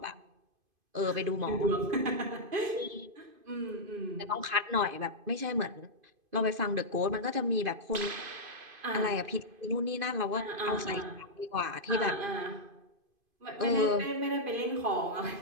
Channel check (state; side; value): late; left; 2.5 ms